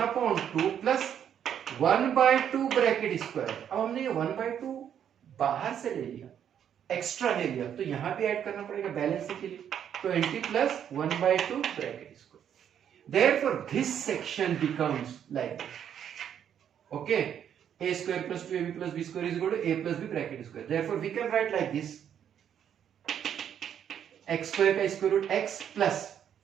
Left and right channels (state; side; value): quieter; left; 9.1 dB